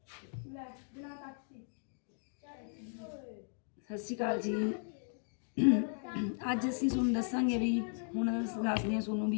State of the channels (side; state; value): right; silent; 53 dB below the other